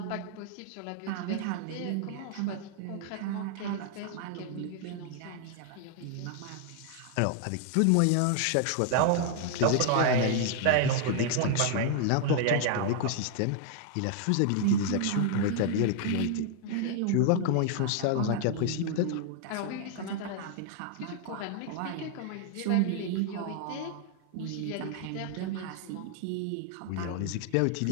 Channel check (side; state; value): both; different; correlation 0.00